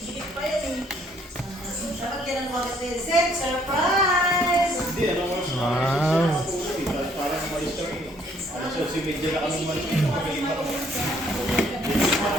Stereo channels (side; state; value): both; normal; correlation 0.64